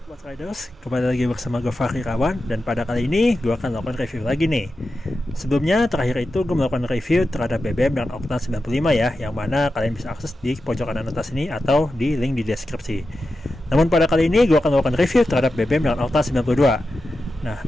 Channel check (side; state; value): both; normal; correlation 0.91